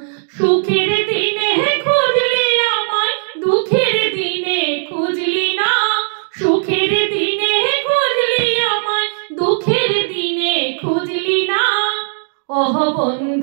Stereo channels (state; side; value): silent; left; digital silence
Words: সুখের দিনে খুঁজলি আমায়, দুঃখের দিনে খুঁজলি না। সুখের দিনে খুঁজলি আমায়, দুঃখের দিনে খুঁজলি না। ও